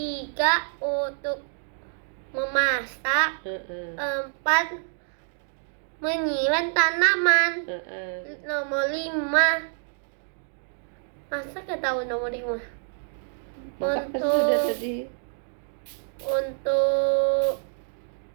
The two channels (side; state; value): left; silent; digital silence